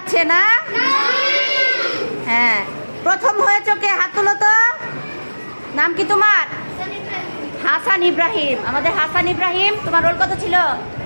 না? হ্যাঁ, প্রথম হয়েছো কে? হাত তুলো তো। নাম কি তোমার? হাসান ইব্রাহিম। আমাদের হাসান ইব্রাহিম। তোমার রোল কত ছিল?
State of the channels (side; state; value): both; inverted; correlation -1.00